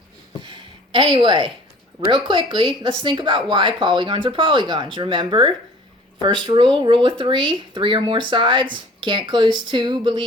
Anyway, real quickly, let's think about why polygons are polygons. Remember, first rule of three or more sides. Can't close two,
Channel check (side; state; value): both; normal; correlation 0.49